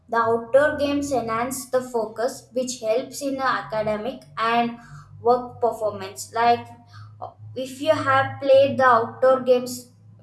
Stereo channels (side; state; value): both; identical; correlation 1.00